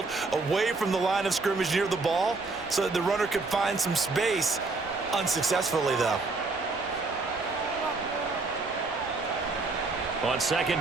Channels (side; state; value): left; quieter; 3.7 dB